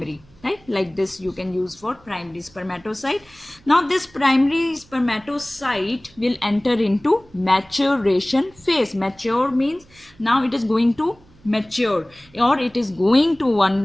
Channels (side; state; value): right; noise; hum, 28 dB below the sound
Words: right? Like this you can use for primary spermatocyte. Now this primary spermatocyte will enter into maturation phase. Mature means now it is going to mature, or it is going to